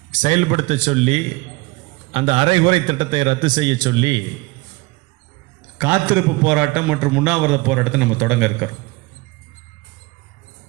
செயல்படுத்த சொல்லி அந்த அரைகுறை திட்டத்தை ரத்து செய்ய சொல்லி காத்திருப்பு போராட்டம் மற்றும் உண்ணாவிரத போராட்டத்தை நம்ம தொடங்க இருக்கிறோம்.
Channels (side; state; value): left; quieter; 23.9 dB